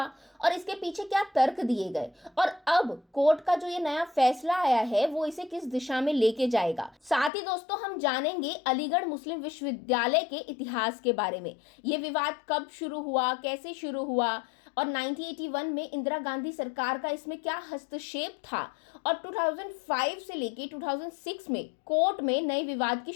और इसके पीछे क्या तर्क दिए गए, और अब कोर्ट का जो ये नया फैसला आया है वो इसे किस दिशा में लेके जाएगा। साथ ही दोस्तों, हम जानेंगे अलीगढ़ मुस्लिम विश्वविद्यालय के इतिहास के बारे में। ये विवाद कब शुरू हुआ, कैसे शुरू हुआ और 1981 में इंदिरा गांधी सरकार का इसमें क्या हस्तक्षेप था, और 2005 से लेके 2006 में कोर्ट में नए विवाद की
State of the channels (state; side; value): drops out; right; at 7.3 s